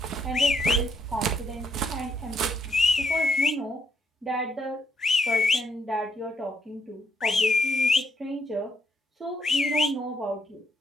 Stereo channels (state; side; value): normal; both; correlation 0.75